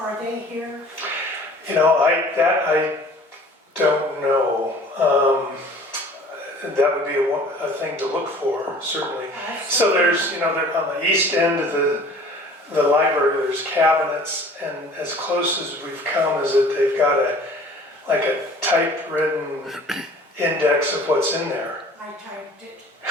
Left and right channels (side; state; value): both; normal; correlation 0.48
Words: they here? I don't know. That would be a thing to look for, certainly. So there's, they're on the east end of the library, there's cabinets, and as close as we've come is that they've got a typewritten index of what's in there. I typed it.